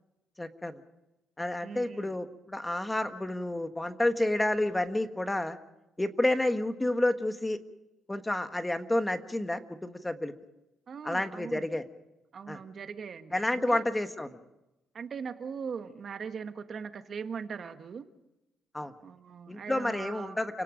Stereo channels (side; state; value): both; normal; correlation 0.97